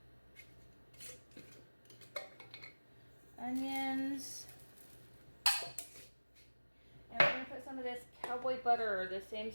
Onions, and we're going to put some of this cowboy butter, or the same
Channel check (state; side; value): inverted; both; correlation -1.00